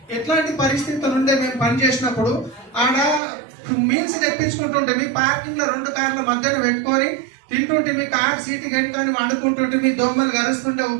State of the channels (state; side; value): drops out; left; at 3.2 s